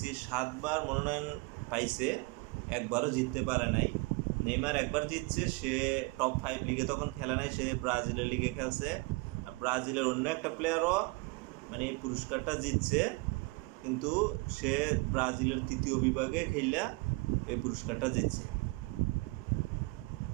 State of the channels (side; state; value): left; quieter; 26.5 dB